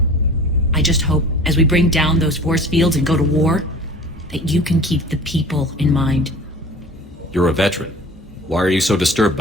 I just hope, as we bring down those force fields and go to war, that you can keep the people in mind. You're a veteran. Why are you so disturbed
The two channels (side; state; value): both; normal; correlation 0.41